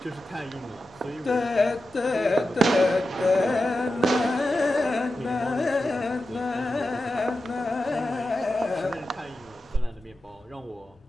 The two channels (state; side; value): normal; both; correlation 0.91